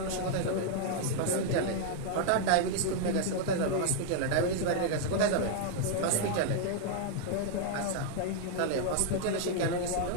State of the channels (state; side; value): different; both; correlation -0.01